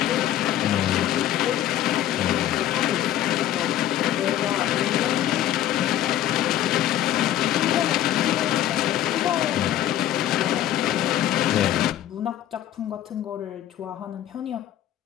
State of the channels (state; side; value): quieter; right; 12.2 dB